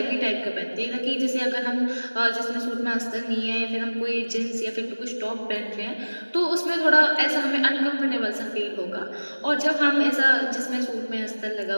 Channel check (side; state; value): both; inverted; correlation -1.00